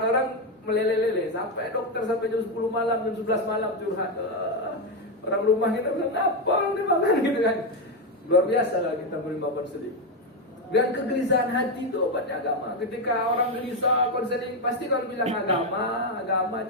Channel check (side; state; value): both; normal; correlation 0.08